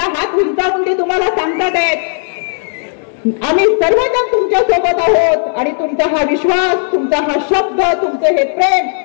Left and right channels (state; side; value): silent; right; 61 dB below the other